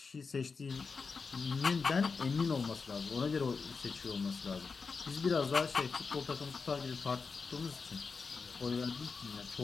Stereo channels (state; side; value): quieter; right; 4.9 dB